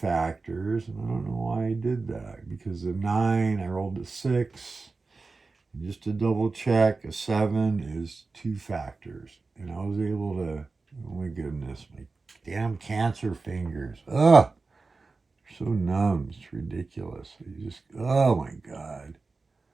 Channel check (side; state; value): left; quieter; 3.9 dB